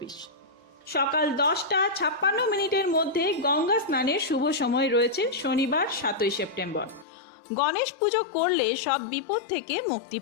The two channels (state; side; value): drops out; right; at 7.1 s